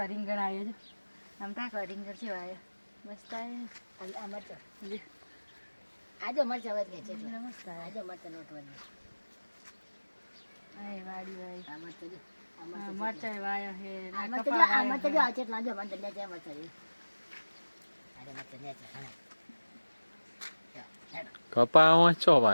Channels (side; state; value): both; inverted; correlation -1.00